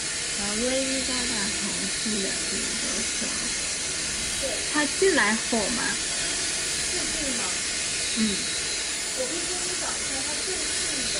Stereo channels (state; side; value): identical; both; correlation 1.00